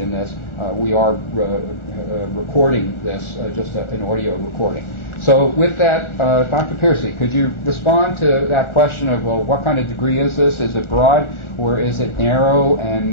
this, we are recording this, just an audio recording. So with that, Dr. Pearcy, could you respond to that question of, well, what kind of degree is this? Is it broad or is it narrow?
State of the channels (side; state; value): right; late; 1.4 ms